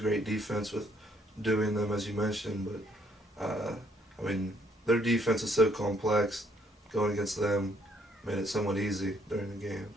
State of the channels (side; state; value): both; normal; correlation 0.68